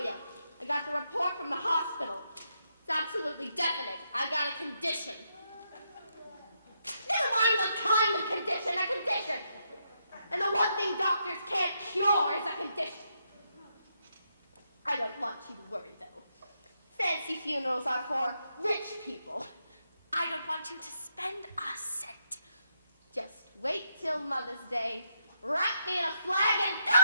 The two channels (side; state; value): both; inverted; correlation -0.79